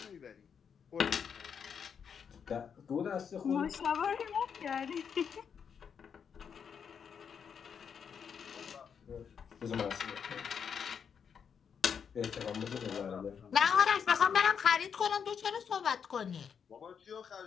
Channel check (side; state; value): right; quieter; 7.1 dB